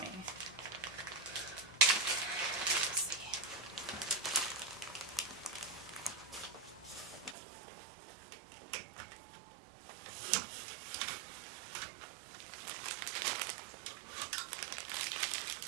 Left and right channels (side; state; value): left; drops out; at 7.4 s